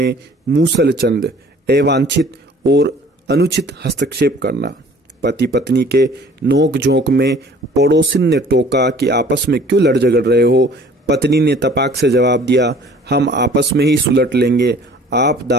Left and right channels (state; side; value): normal; both; correlation 0.51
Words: मूसल चंद, अवांछित और अनुचित हस्तक्षेप करना। पति पत्नी के नोक झोंक में पड़ोसिन ने टोका कि आपस में क्यों लड़ झगड़ रहे हो। पत्नी ने तपाक से जवाब दिया, हम आपस में ही सुलट लेंगे, आप